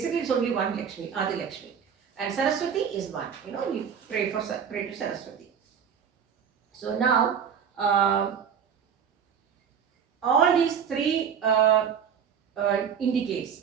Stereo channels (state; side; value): quieter; left; 7.5 dB